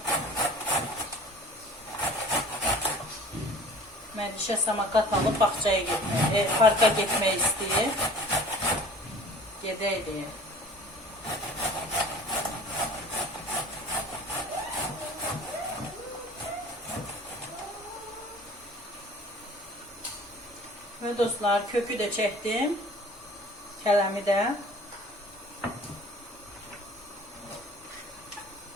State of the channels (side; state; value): both; normal; correlation 0.46